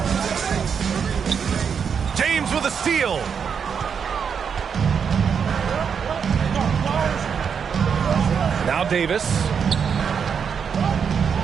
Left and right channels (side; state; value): left; quieter; 6.8 dB